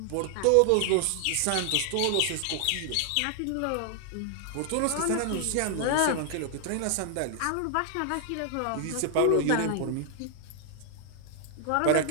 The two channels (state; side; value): different; both; correlation 0.00